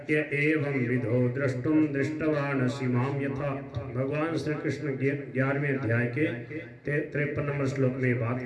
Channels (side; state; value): both; identical; correlation 1.00